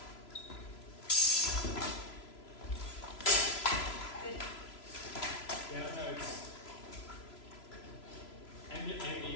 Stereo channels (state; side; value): late; right; 3.0 ms